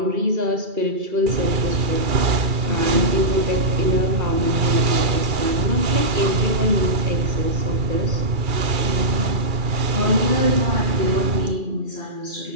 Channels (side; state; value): left; late; 2.4 ms